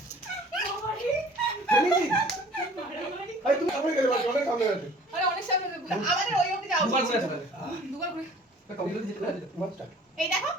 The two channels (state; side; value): normal; both; correlation 0.50